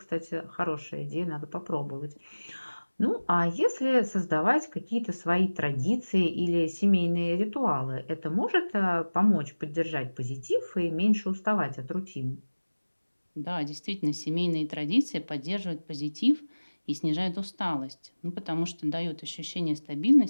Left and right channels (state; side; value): inverted; both; correlation -1.00